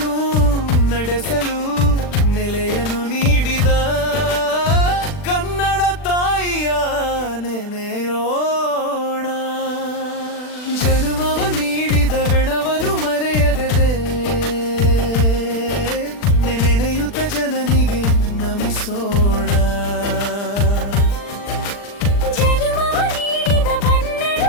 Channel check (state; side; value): late; right; 40 ms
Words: ನಡೆಸಲು ನೆಲೆಯನ್ನು ನೀಡಿದ ಕನ್ನಡ ತಾಯಿಯ ನೆನೆಯೋಣ. ಜನ್ಮವ ನೀಡಿದ ಬೆಣವನು ಮರೆಯದೆ ನೆನೆಯುತ್ತ ಜನನಿಗೆ ನಮಿಸೋಣ.